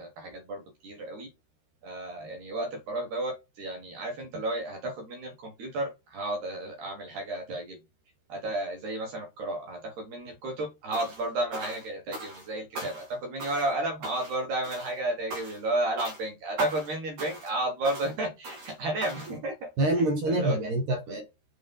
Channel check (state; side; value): late; left; 13 ms